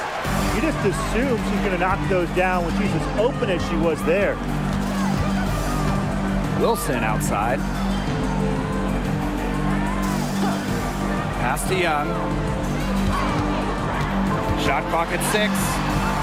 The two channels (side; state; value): both; identical; correlation 1.00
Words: You just assume she's going to knock those down when she's as open as she was there. Wilson outside. Pass to Young. Shot clock at 6.